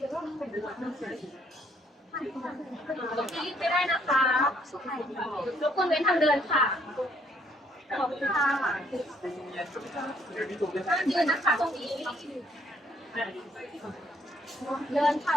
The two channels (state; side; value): normal; both; correlation 0.67